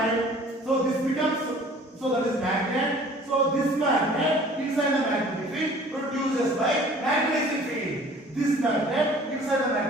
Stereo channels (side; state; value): both; normal; correlation 0.50